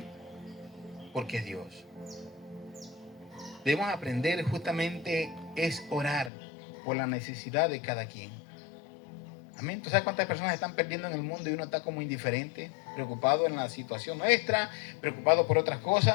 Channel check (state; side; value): drops out; right; at 6.3 s